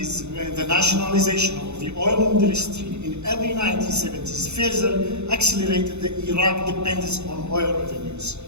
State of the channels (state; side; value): late; left; 0.81 ms